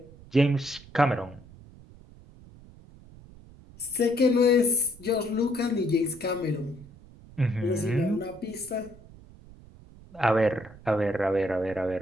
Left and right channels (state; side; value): noise; right; rumble, 21 dB below the sound